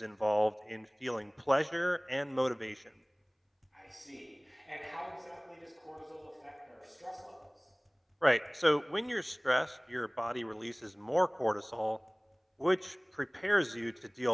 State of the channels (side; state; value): both; identical; correlation 1.00